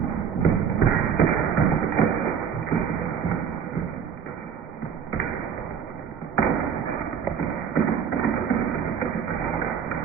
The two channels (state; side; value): quieter; left; 7.4 dB